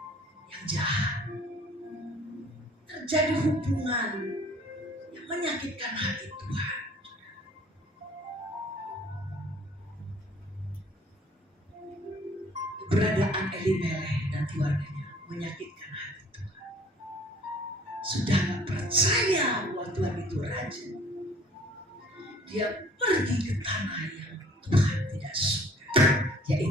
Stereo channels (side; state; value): both; normal; correlation 0.54